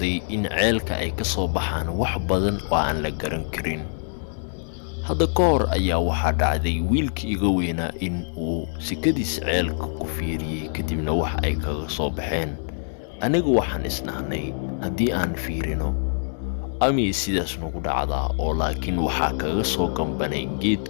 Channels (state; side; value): silent; right; digital silence